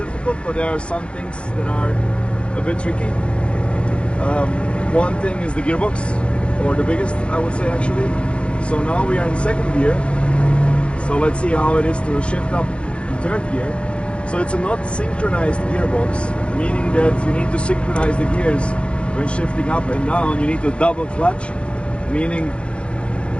but there are some things that are a bit tricky. One thing is the gearbox, or the biggest, I would say, actually. So now we are in second gear, so let's see how it is to shift up in third gear. So it's a not synchronized gearbox, meaning that you need to synchronize the gears when shifting up and down. You need to double clutch, meaning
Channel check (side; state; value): right; late; 0.059 ms